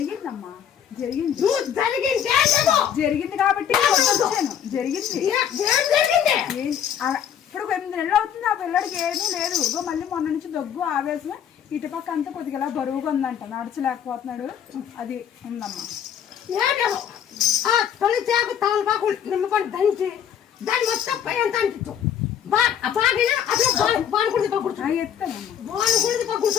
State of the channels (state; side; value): quieter; right; 9.0 dB